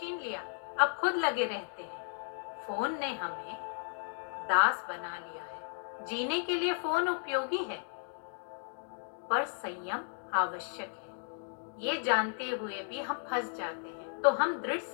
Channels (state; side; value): silent; right; digital silence